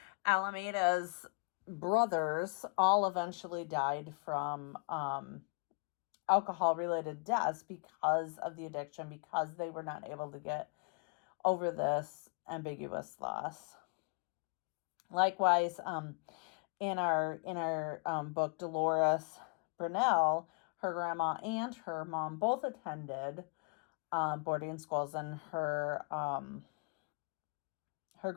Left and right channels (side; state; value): right; quieter; 35.8 dB